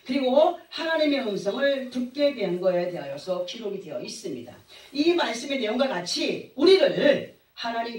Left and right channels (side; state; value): both; identical; correlation 1.00